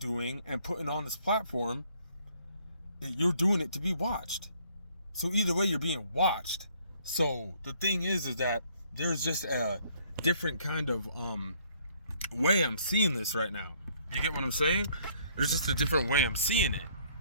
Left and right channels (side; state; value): both; inverted; correlation -0.63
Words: and putting on this platform, you're doing it to be watched. So either way, you're being watched. So the thing is that there's just a different kind of way I'm seeing this right now. You get what I'm saying? There's just a different way I'm seeing it.